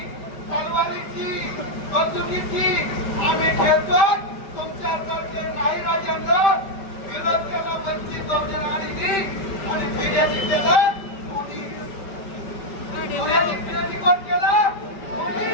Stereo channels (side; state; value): right; late; 5.1 ms